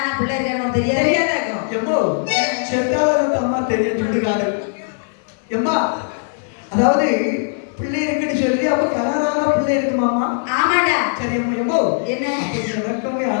பிள்ளை இருக்கான்னு தெரியாது. தெரியாதாக்கும். எம்மோ செத்தாலும் அம்மா தெரிய சொல்லுகாரு. எம்மா அதாவது பிள்ளை இருக்குன்னு சொல்லி அப்ப கல்யாணம் பிள்ளை இருக்குமாமா? ஆமாடா. சரி அம்மா. எம்மோ என்ன? எனக்குமே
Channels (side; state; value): right; silent; 60 dB below the other